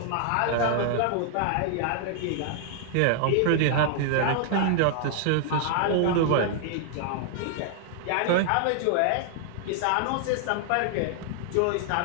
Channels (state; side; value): different; both; correlation 0.00